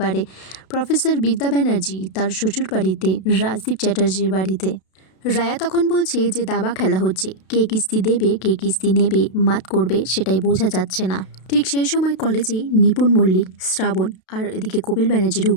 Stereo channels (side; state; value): right; late; 32 ms